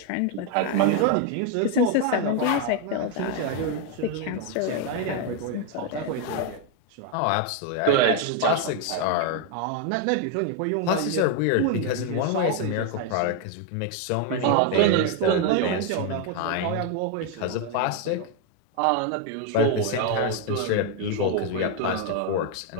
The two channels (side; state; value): both; different; correlation 0.01